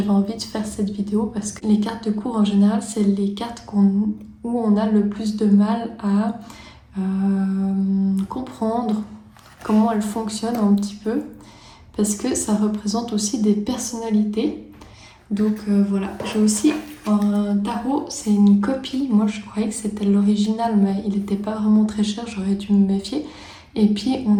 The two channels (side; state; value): both; identical; correlation 1.00